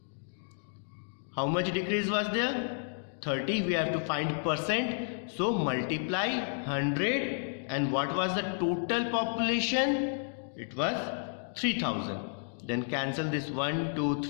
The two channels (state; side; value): silent; right; digital silence